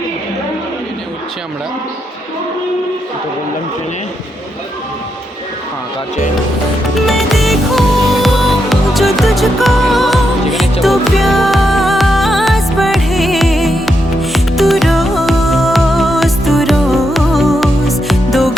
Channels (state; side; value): normal; both; correlation 0.82